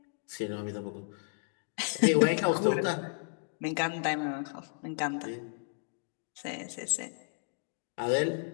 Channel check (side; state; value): right; silent; digital silence